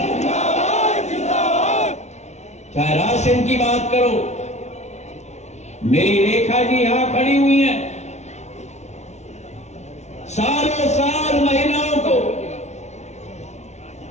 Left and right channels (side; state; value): right; late; 0.32 ms